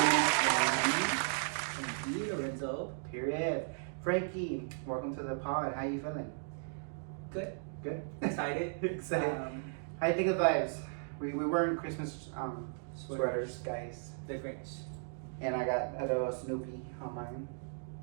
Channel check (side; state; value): left; silent; digital silence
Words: Frankiee Lorenzo. Period. Frankie, welcome to the pod. How you feeling? Good. Good. Excited. Excited. How you think of vibes? We wearing Christmas sweaters, guys. The Grinch. And I got a little Snoopy on mine.